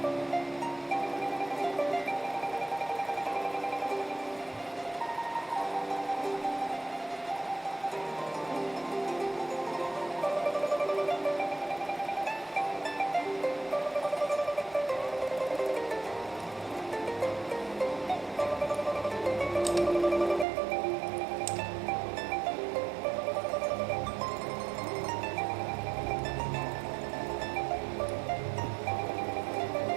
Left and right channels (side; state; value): left; drops out; at 20.5 s